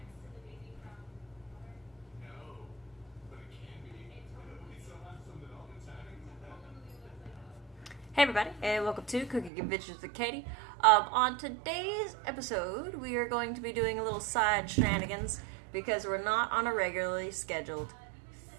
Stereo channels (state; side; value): drops out; left; at 9.5 s